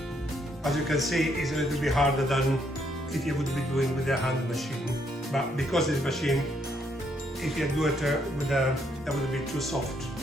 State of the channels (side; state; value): both; normal; correlation 0.73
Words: As you can see, it's a little bit harder than if you would be doing with a hand machine. But because this machine, if you do it with that would be too soft.